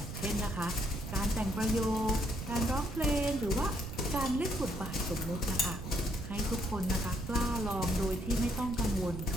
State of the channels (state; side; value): noise; right; rumble, 7 dB below the sound